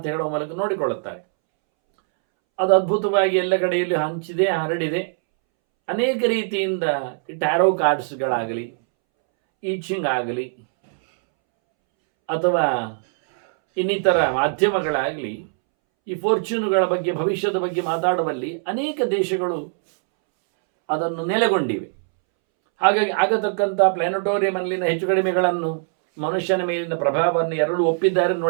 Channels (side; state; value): left; silent; 64 dB below the other